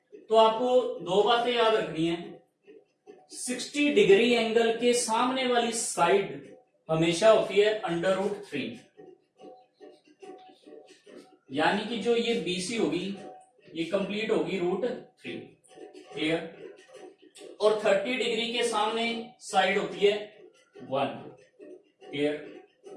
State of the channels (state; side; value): identical; both; correlation 1.00